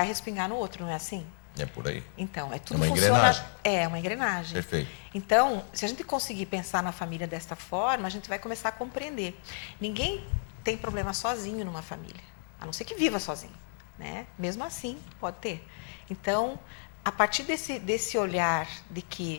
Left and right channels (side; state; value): right; silent; digital silence